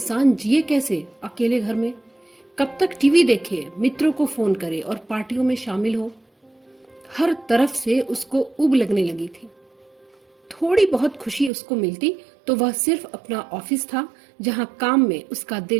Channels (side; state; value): left; drops out; at 11.5 s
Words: जिए कैसे अकेले घर में। कब तक टीवी देखे, मित्रों को फोन करे और पार्टियों में शामिल हो। हर तरफ से उसको उब लगने लगी थी। थोड़ी बहुत खुशी उसको मिलती तो वह सिर्फ अपना ऑफिस था जहां काम में उसका